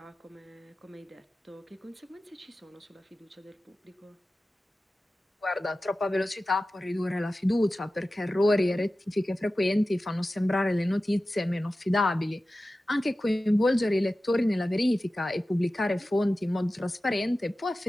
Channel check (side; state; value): both; normal; correlation 0.95